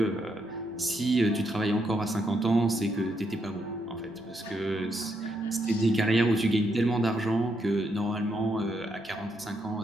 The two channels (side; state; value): both; normal; correlation 0.78